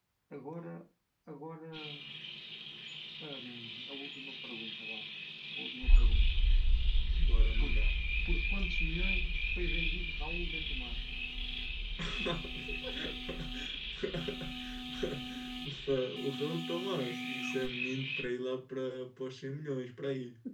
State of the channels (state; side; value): identical; both; correlation 1.00